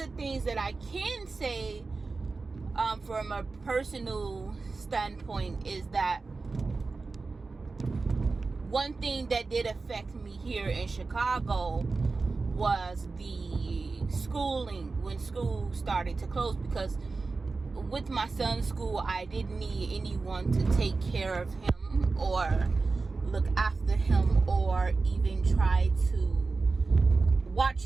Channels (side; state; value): left; quieter; 4.0 dB